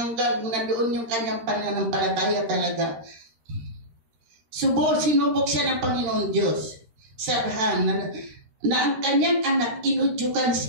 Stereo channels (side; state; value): left; late; 13 ms